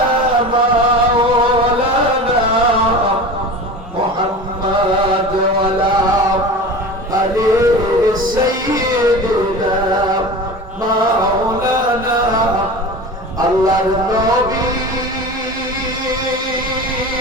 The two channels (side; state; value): both; normal; correlation 0.33